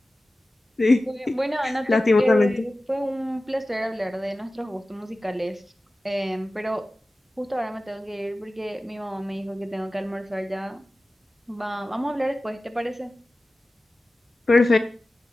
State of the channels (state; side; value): normal; both; correlation 0.96